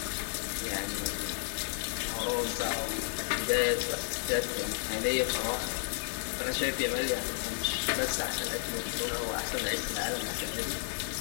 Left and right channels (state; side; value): silent; right; digital silence